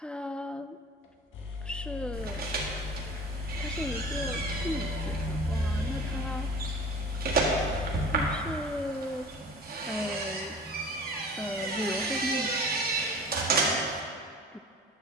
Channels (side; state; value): both; normal; correlation 0.40